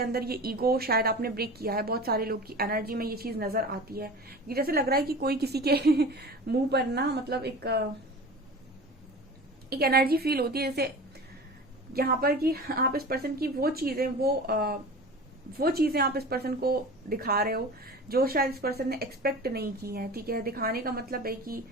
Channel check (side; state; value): both; normal; correlation 0.36